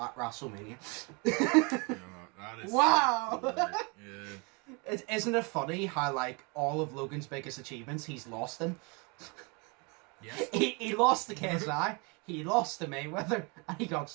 WrestleMania. That is wow! Yeah. Isn't it funny how, like, all of Logan's biggest achievements he's lost in? Yes. He lost to KSI, he lost to Mayweather, and he got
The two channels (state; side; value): quieter; left; 31.0 dB